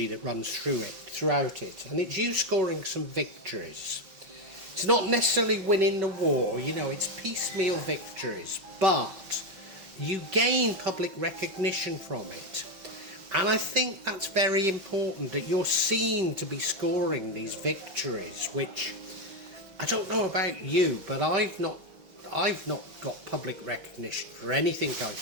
that runs throughout it, and it's you scoring some victories. It's not necessarily winning the war, it's piecemeal victories, but you gain public recognition from it. And I think that's very important, that you're seen to be scoring these victories, which I don't know about you, but I've not got public recognition for anything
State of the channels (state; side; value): late; left; 5.2 ms